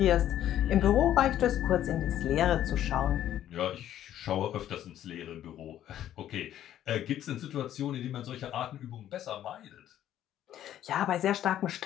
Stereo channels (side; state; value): right; quieter; 11.7 dB